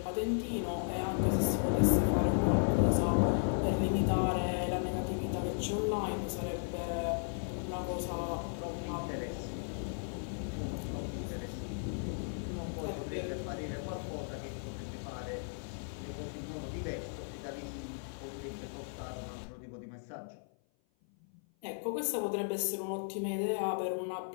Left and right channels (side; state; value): right; silent; 54 dB below the other